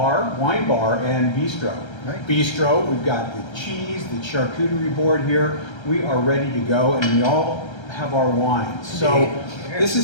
wine bar and bistro. Right. Bistro, we've got the cheese, the charcuterie board here. We are ready to go, and we all have our wines. So this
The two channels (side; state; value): right; late; 1.3 ms